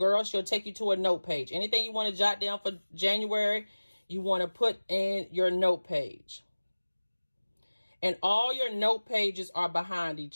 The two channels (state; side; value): inverted; both; correlation -1.00